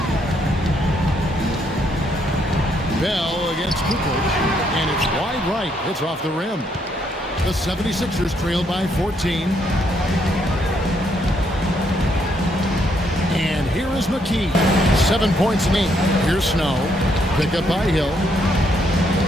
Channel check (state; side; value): normal; both; correlation 0.73